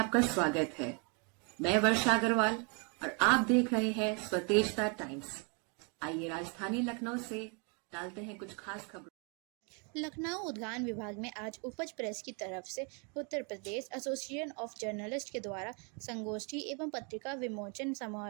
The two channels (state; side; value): quieter; left; 35.0 dB